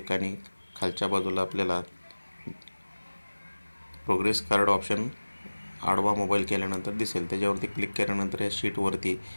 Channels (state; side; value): inverted; both; correlation -1.00